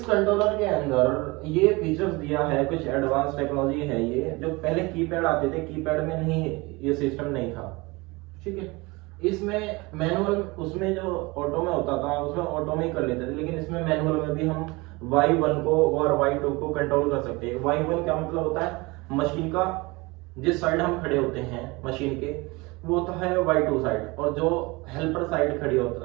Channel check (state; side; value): quieter; left; 24.4 dB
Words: कंट्रोलर के अंदर ये फीचर्स दिया है, कुछ एडवांस टेक्नोलॉजी है ये, जो पहले कीपैड आते थे, कीपैड में नहीं, ये सिस्टम नहीं था। ठीक है, इसमें मैनुअल, उसमें जो ऑटो में होता था उसमें ऑटो में ही कर लेते थे, लेकिन इसमें मैनुअल में भी हम Y1 को और Y2 को कंट्रोल कर सकते हैं। Y1 क्या मतलब होता है, मशीन का जिस साइड हम खड़े होते हैं मशीन के, वो होता है Y2 साइड, और जो हेल्पर साइड खड़ी